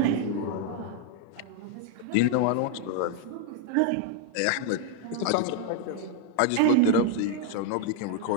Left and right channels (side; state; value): both; different; correlation 0.00